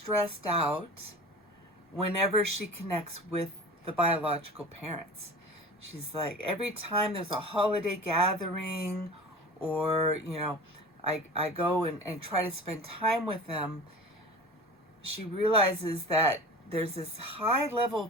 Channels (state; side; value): normal; both; correlation 0.36